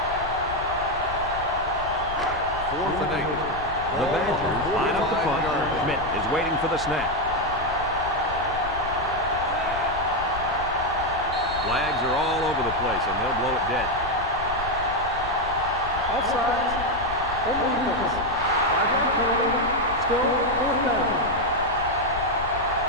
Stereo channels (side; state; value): left; noise; rumble, 11 dB below the sound